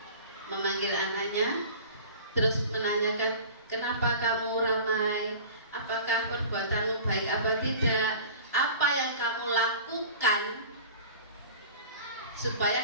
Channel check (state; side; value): inverted; both; correlation -0.40